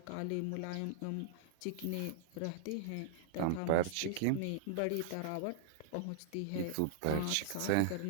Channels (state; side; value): different; both; correlation -0.01